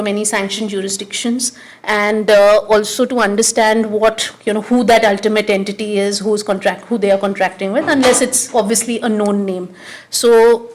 any sanctioned jurisdictions, and also to understand what, who that ultimate entity is, who they are contracting with, unless it's obviously a known name. So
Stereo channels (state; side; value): identical; both; correlation 1.00